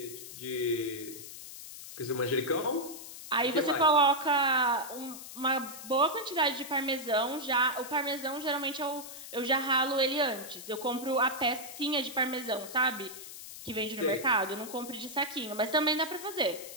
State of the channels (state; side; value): noise; left; hiss, 12 dB below the sound